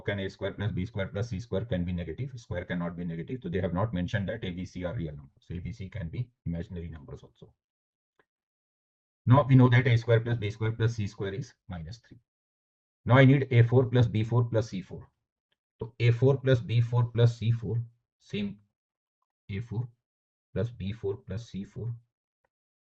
A square plus B square plus C square can be negative, square cannot be negative. So they have not mentioned that A, B, C are real numbers. So A, B, C can be imaginary numbers also. Now we know that A square plus B square plus C square is minus 3. Now I need A4 plus B4 plus C4. So A4 plus B4 plus C4, same A4 plus B4 plus C4.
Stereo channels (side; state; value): both; identical; correlation 1.00